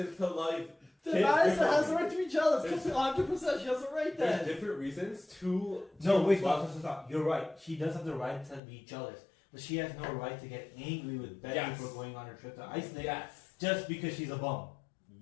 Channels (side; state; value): right; drops out; at 8.6 s